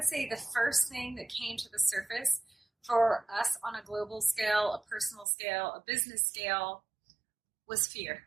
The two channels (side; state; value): left; drops out; at 5.2 s